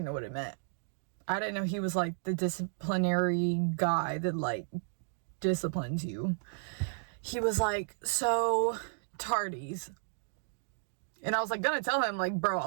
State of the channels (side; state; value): left; silent; digital silence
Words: know what it meant. I didn't know he was like the disciplinary guy that like disciplines you. He was like, so tardies. And I was like gonna tell him, like,